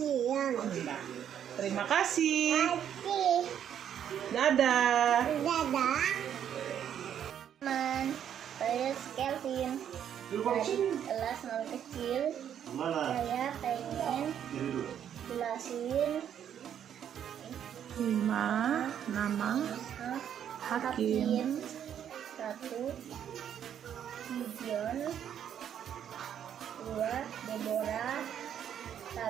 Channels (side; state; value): left; quieter; 9.4 dB